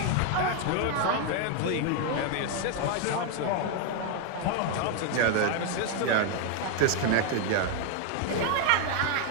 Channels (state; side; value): different; both; correlation 0.00